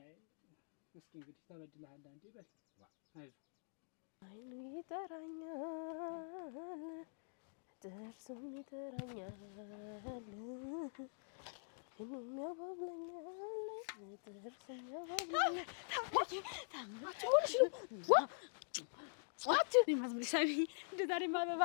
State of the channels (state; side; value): silent; right; digital silence